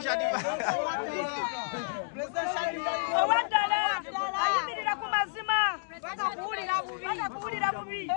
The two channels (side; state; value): right; silent; digital silence